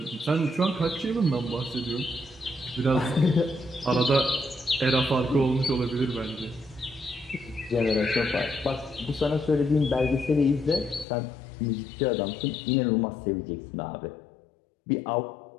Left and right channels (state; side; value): drops out; right; at 11.1 s